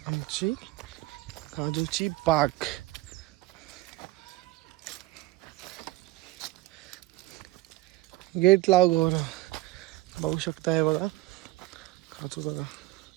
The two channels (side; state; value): left; quieter; 18.9 dB